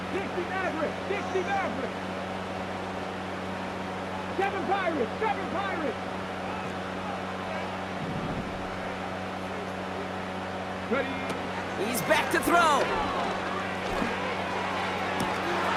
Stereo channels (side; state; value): both; identical; correlation 1.00